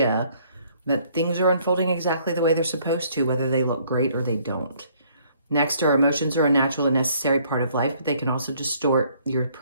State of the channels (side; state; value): both; inverted; correlation -0.63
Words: that things are unfolding exactly the way they're supposed to, whether they look great or they don't. Next, our emotions are a natural and necessary part of life, but they can also distort your